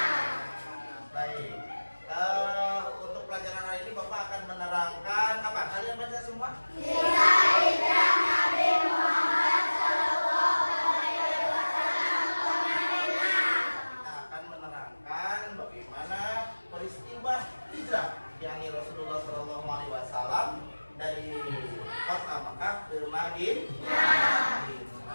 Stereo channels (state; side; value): inverted; both; correlation -1.00